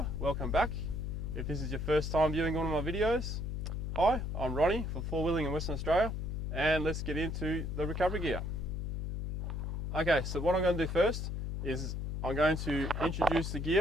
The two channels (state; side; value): noise; left; hum, 3 dB below the sound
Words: welcome back. If this is your first time viewing one of my videos, hi, I'm Ronnie from Four Wheeling in Western Australia, and let's get into the recovery gear. Okay, so what I'm going to do first is I'm going to introduce the